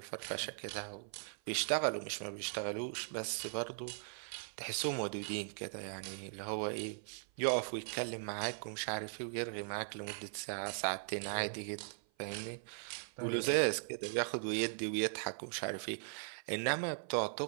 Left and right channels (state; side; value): silent; left; 52 dB below the other